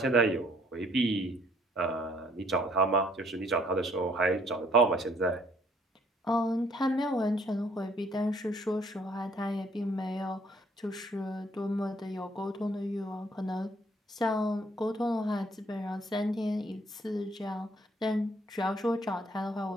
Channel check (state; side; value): normal; both; correlation 0.63